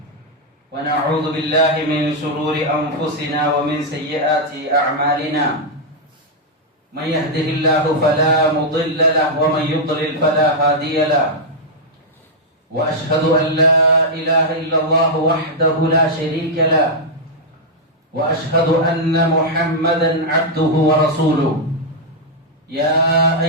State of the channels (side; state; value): both; normal; correlation -0.04